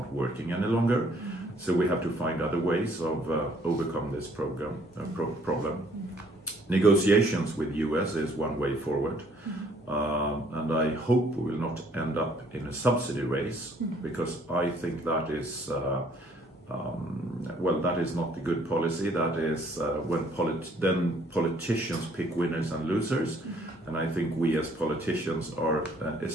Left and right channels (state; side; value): normal; both; correlation 0.62